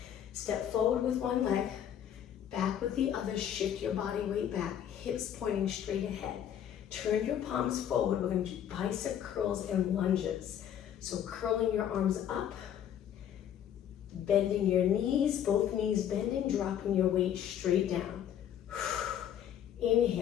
Step forward with one leg, back with the other. Shift your body weight back, hips pointing straight ahead. Turn your palms forward. We're going to do bicep curls and lunges. So curling your arms up, bending your knees, both knees bending, dropping your weight straight down.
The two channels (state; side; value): quieter; right; 9.9 dB